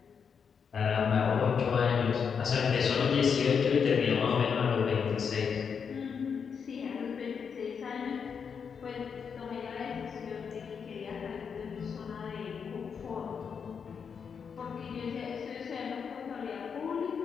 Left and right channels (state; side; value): quieter; right; 6.5 dB